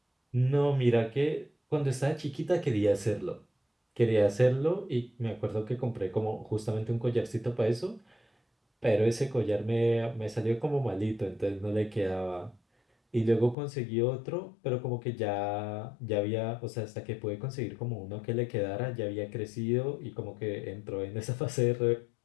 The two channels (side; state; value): right; drops out; at 13.6 s